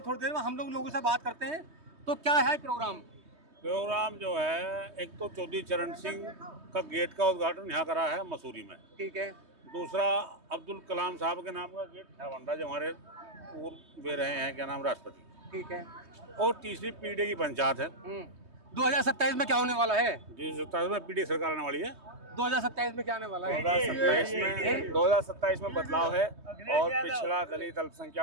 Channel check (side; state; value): left; late; 3.2 ms